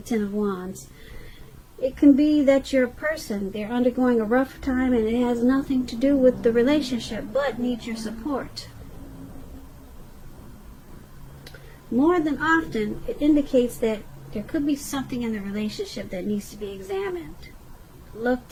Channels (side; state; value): both; identical; correlation 1.00